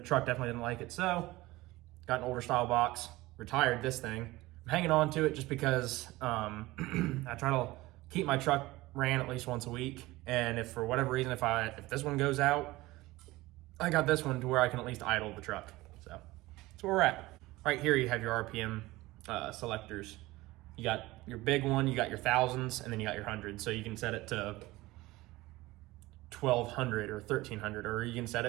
definitely didn't like it, so got an older style box, retired this thing. I'm hanging on to it just because I try to keep my truck ran at least once a week, and if for whatever reason, if this one goes out, I got this one to where I can at least idle the truck. So that's where we're at. Right here you have your RPM selectors. You got your big one, you got your thousands, and then you got your hundreds. So you can set it to 1200 or 1300, or you can set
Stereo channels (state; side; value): quieter; left; 19.4 dB